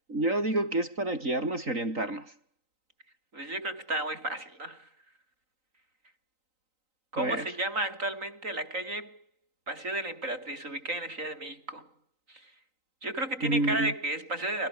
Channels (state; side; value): late; left; 3.9 ms